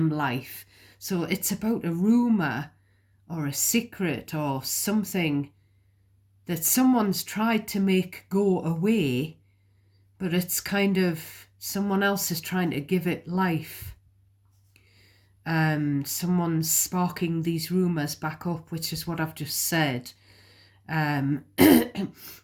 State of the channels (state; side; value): identical; both; correlation 1.00